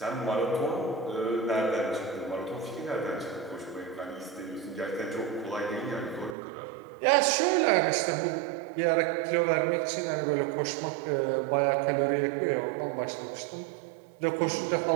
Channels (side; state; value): left; drops out; at 6.4 s